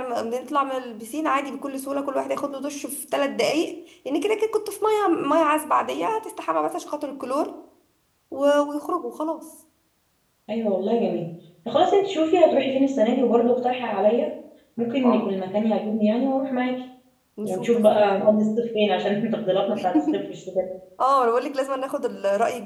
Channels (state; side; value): identical; both; correlation 1.00